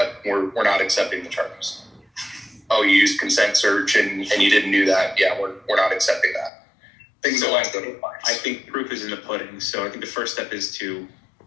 we're not accepting the charges. Oh, you used consent search and you didn't do that. Yeah, we're not accepting that. Things along those lines. I think proof is in the pudding. So I think the first step is to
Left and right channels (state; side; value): drops out; right; at 6.5 s